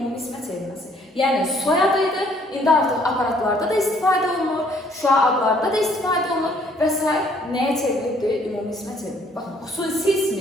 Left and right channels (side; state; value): both; normal; correlation 0.63